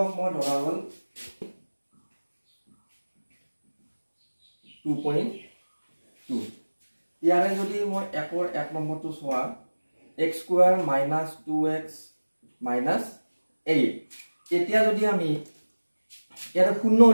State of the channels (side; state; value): both; inverted; correlation -1.00